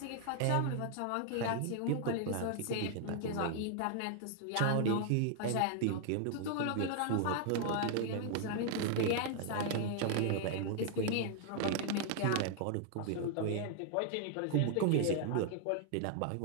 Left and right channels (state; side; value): different; both; correlation 0.00